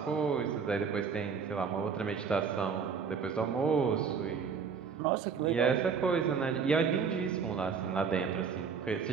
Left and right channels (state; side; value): quieter; left; 6.0 dB